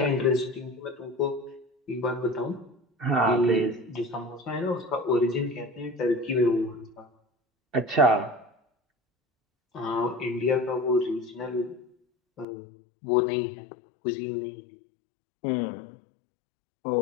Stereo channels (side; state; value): right; drops out; at 12.5 s